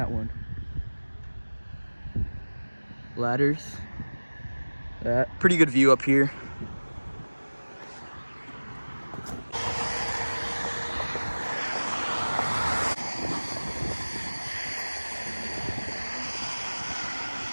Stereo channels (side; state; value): both; inverted; correlation -1.00